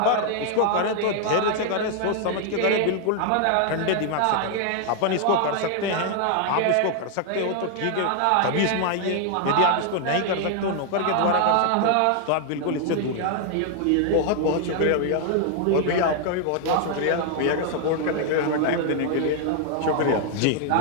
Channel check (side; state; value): both; different; correlation 0.00